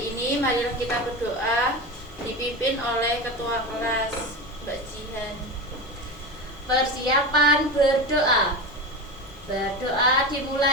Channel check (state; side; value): normal; both; correlation 0.24